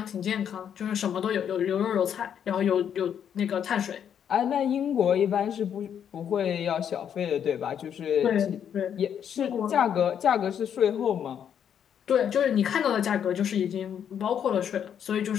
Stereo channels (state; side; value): quieter; right; 8.7 dB